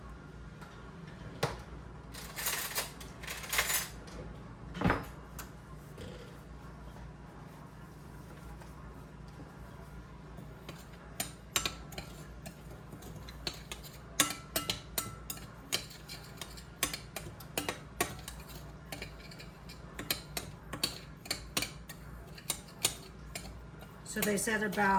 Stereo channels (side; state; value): both; identical; correlation 1.00